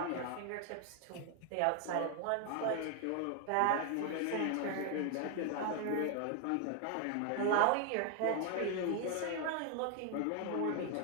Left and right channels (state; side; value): different; both; correlation 0.00